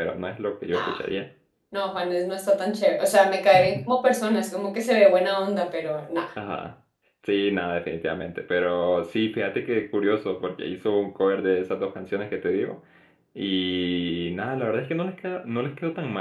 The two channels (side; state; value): both; identical; correlation 1.00